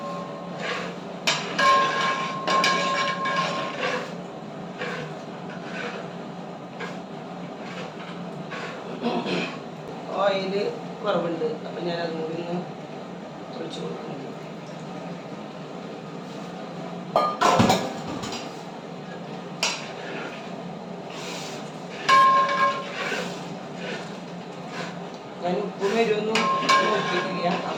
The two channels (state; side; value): identical; both; correlation 1.00